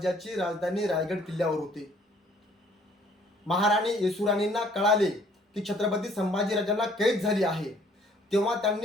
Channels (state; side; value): normal; both; correlation 0.60